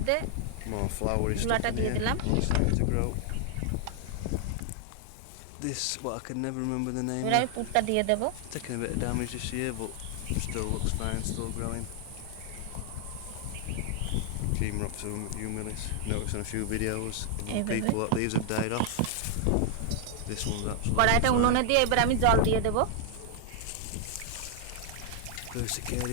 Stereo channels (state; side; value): different; both; correlation 0.00